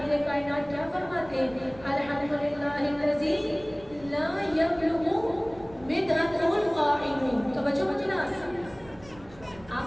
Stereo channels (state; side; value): noise; right; rumble, 22 dB below the sound